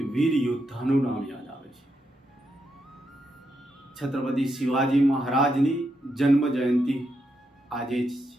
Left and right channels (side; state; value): both; normal; correlation 0.82